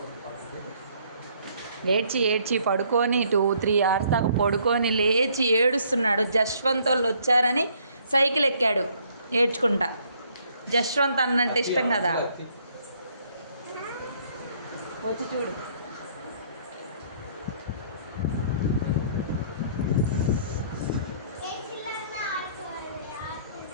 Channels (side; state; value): both; inverted; correlation -0.64